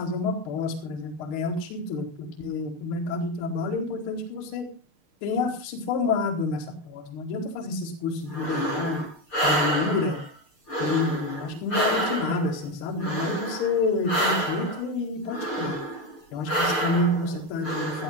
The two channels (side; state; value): right; late; 6.6 ms